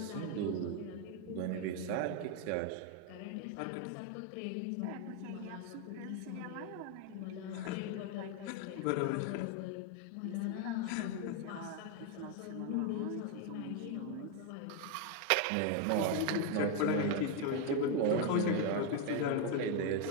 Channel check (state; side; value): different; both; correlation 0.01